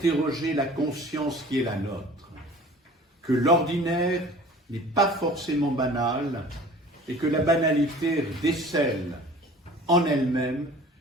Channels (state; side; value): normal; both; correlation 0.45